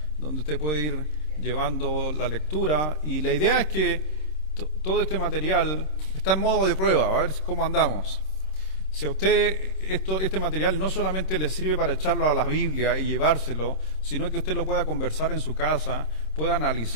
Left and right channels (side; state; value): right; late; 26 ms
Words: donde usted puede ir llevando la lectura, y la idea es que todo este material está en modo de prueba, a ver cómo andamos. Si a usted este material no solamente le sirve para echarlo a la Biblia y llevárselo, sino que usted lo pueda conversar en su casa, pueda